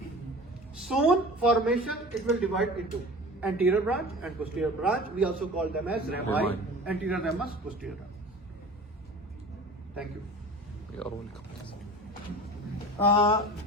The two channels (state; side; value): normal; both; correlation 0.39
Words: Soon formation, it will divide into anterior branch and posterior branch. We also call them as rami, Rami. anterior ramus, posterior ramus. Thank you. يرونكم.